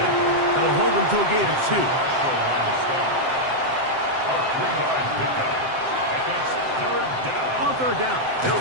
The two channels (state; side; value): late; left; 7.7 ms